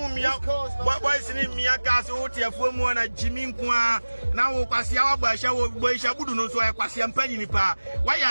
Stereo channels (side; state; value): both; inverted; correlation -1.00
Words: boys in Mia Castle, Tiafumo, and Jimmy Kwa. Now, Passia, Boy Shabudu, no so I pass him penny pa.